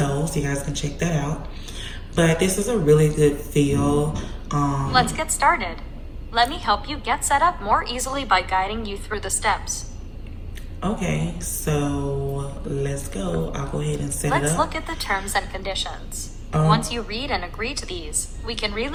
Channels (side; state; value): both; identical; correlation 1.00